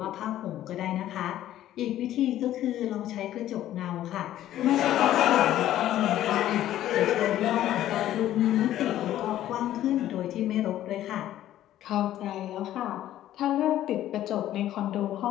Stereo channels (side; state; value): right; quieter; 12.9 dB